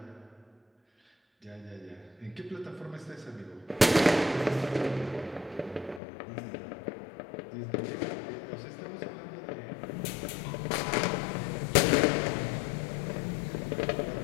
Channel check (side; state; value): right; drops out; at 6.0 s